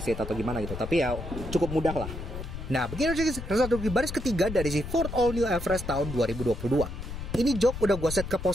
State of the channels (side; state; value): left; noise; rumble, 8 dB below the sound